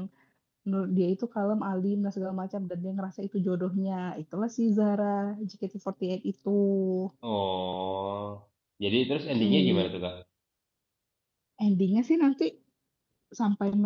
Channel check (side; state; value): both; identical; correlation 1.00